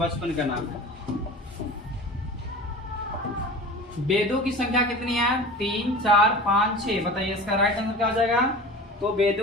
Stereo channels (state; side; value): normal; both; correlation 0.36